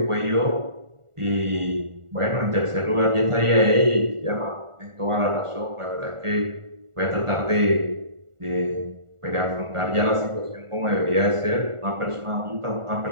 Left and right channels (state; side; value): late; left; 1.5 ms